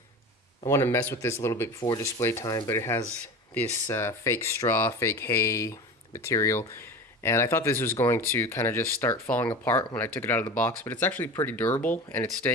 to mess with this a little bit before display time, but it has this fake straw, fake hay material. And I thought this was going to kind of just start falling apart when I took it out of the box, but it's actually pretty durable and it's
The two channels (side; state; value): both; normal; correlation 0.32